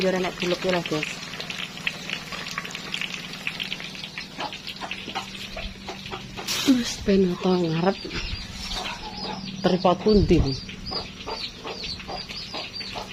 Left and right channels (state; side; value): identical; both; correlation 1.00